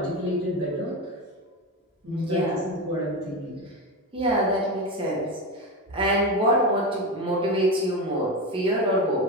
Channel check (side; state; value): both; normal; correlation 0.18